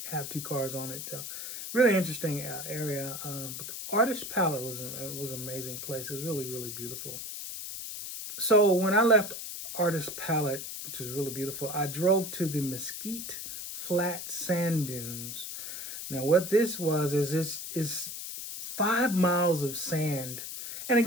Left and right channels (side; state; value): left; noise; hiss, 7 dB below the sound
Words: have two cars on it. Really interesting area. But the Artist Palette was an amazing place. It was really, really beautiful. So when I left Artist Palette, which was really beautiful, I drove to the Mesquite Flat Sand Dunes. Now, what this was is this is 5 miles of sand. And